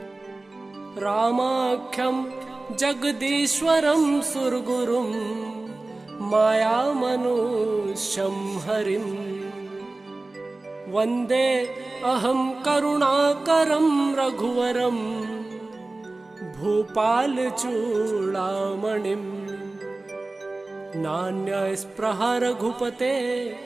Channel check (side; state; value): left; quieter; 3.1 dB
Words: रामाख्यं जगदीश्वरं सुरगुरुं मायामनुष्यं हरिं वन्दे अहं करुणाकरं रघुवरं भूपालचूडामणिं। नान्यस्पृहा रघुपते